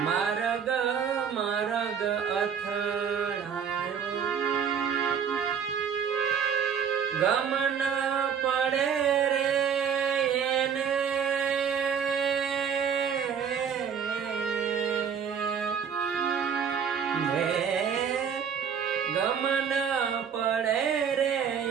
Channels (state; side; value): quieter; left; 7.3 dB